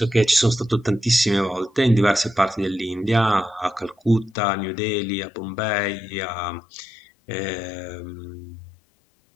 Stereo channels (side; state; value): right; drops out; at 4.4 s